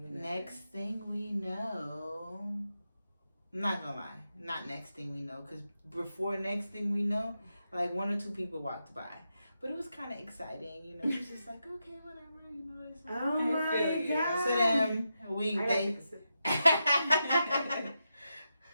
to do that. Next thing we know, I'm not gonna lie, not next thing we know, because before next thing we know, like 1 or 2 people walked by. But it was kind of exciting, It was just like, okay, whatever, It's like, Oh my god. so then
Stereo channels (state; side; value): inverted; both; correlation -0.86